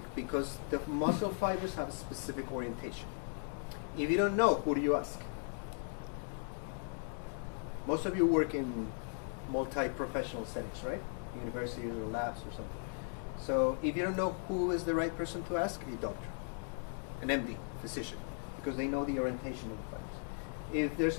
because the muscle fibers have a specific orientation. If you don't know, who do you ask? Most of you work in multi-professional settings, right? University or labs or something. So if you don't know who is the right person to ask, a doctor, an MD, physician, because they know the orientation of the fibers. If there's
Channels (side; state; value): right; silent; 53 dB below the other